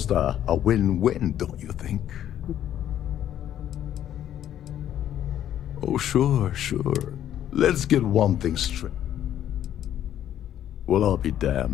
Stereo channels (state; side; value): quieter; right; 11.0 dB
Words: a win-win, don't you think? Oh, sure. Let's get one thing straight. Well, I'll be